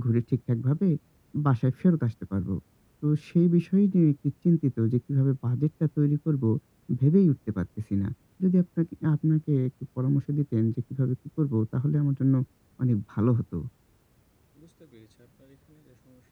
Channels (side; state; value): both; identical; correlation 1.00